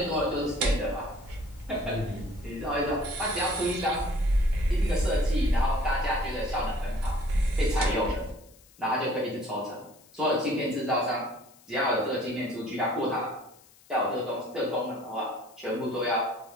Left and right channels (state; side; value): noise; left; hiss, 27 dB below the sound